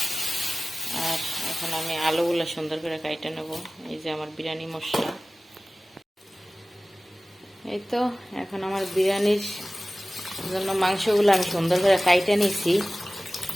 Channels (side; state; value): both; normal; correlation 0.97